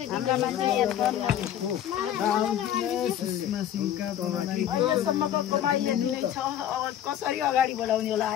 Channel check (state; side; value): quieter; right; 10.6 dB